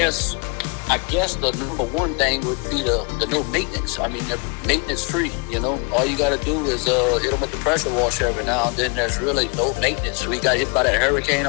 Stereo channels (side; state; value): right; quieter; 33.9 dB